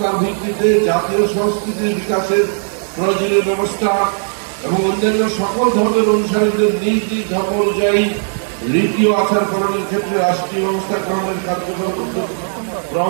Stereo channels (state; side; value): silent; left; digital silence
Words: ভিত্তিতে জাতীয় সংস্কৃতির বিকাশের প্রয়োজনীয় ব্যবস্থা এবং অন্যান্য সকল ধর্মের অনুসারীদের নিজ নিজ ধর্ম অনুযায়ী রীতি ও আচার পালনের ক্ষেত্রে রাষ্ট্রীয় ব্যবস্থা গ্রহণের কার্যকর উদ্যোগ